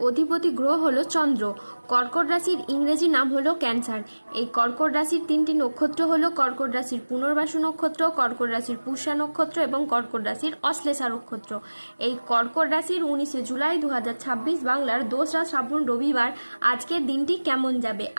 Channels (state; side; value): inverted; both; correlation -1.00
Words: অধিপতি গ্রহ হলো চন্দ্র। কর্কট রাশির ইংরেজি নাম হলো ক্যান্সার। এই কর্কট রাশির তিনটি নক্ষত্র হলো কর্কট রাশির পুনর্বাসু নক্ষত্র, কর্কট রাশির পুষ্যা নক্ষত্র এবং কর্কট রাশির অশ্লেষা নক্ষত্র। এই কর্কট রাশির 19শে জুলাই 2026 বাংলার 2রা শ্রাবণ রবিবার আজকের দিনটি কেমন যাবে।